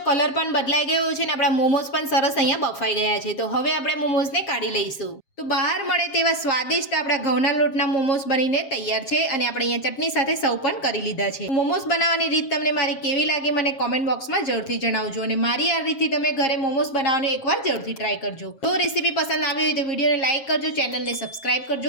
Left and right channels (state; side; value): late; right; 7.4 ms